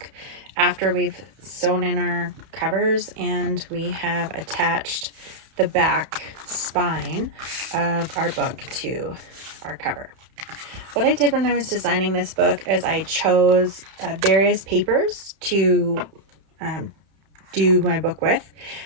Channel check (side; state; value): left; late; 31 ms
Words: after we've sewn in our covers and we have attached the back spine of our book to our cover. What I did when I was designing this book is I chose various papers to do my book with.